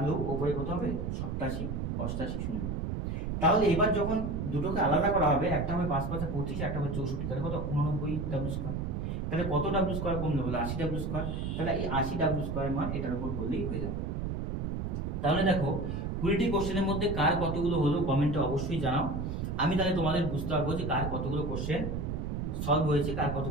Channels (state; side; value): noise; right; rumble, 2 dB below the sound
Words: উপরে কত হবে? 87 88 0। তাহলে এবার যখন দুটোকে আলাদা করা হবে, একটা হবে 5×5 = 25, একটা হবে 64, তাহলে কত 89 ডাব্লিউ স্কোয়ার। তাহলে কত ডাব্লিউ স্কোয়ার কমলে বলে 80 ডাব্লিউ স্কোয়ার। তাহলে এই 80 ডাব্লিউ স্কোয়ার মান এটার উপর করলেই হয়ে যাবে। তাহলে দেখো 20টি কোশ্চেনের মধ্যে কার কতগুলো হলো কমেন্টে অবশ্যই জানাও। আমি তাহলে তোমাদের বুঝতে পারবো যে কার কতগুলো কোশ্চেন সলভ হয়েছে, কার